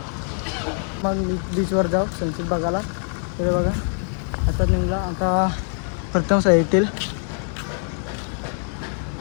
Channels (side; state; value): right; silent; 55 dB below the other